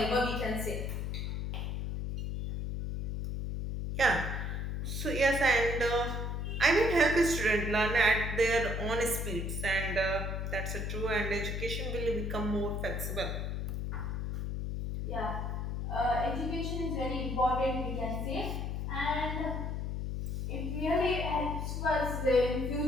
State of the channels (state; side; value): noise; left; hum, 2 dB below the sound